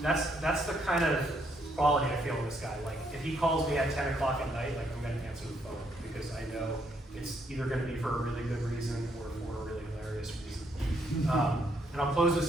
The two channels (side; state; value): both; normal; correlation 0.73